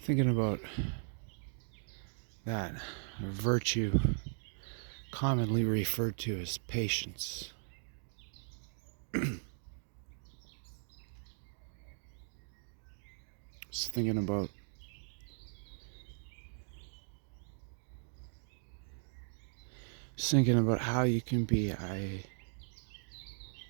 about that virtue commonly referred to as patience. Just thinking about how you can be a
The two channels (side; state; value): left; silent; digital silence